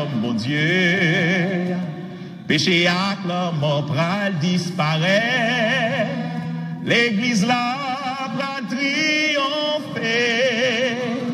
mon Dieu. Péché à la mort pral disparaît. L'église là pral triompher.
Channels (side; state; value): both; identical; correlation 1.00